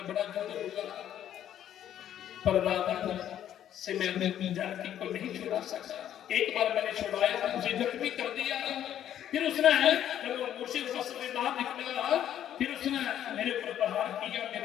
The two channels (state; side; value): quieter; right; 10.7 dB